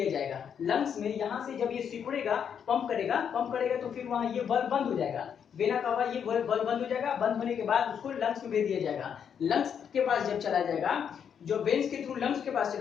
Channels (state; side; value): quieter; right; 7.8 dB